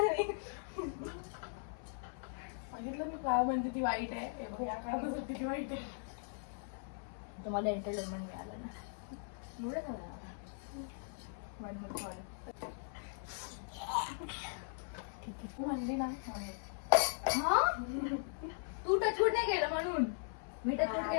सांगितलं मी काय म्हणते ती वाईट आहे. या काळात होती ती वाईट आहे. तुम्हाला एंटरटेनमेंट मिळालं ना. एवढं झालं. तू म्हणली ना. तू टचवूड नाही केलं म्हणून. मी टचवूड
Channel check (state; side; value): silent; right; 52 dB below the other